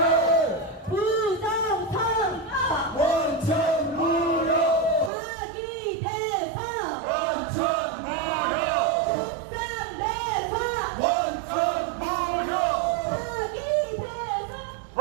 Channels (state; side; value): drops out; left; at 5.1 s